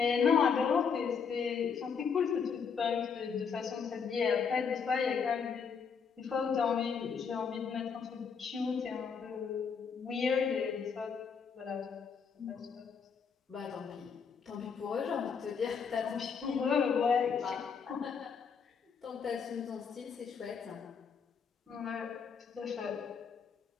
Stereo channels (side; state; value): right; quieter; 6.2 dB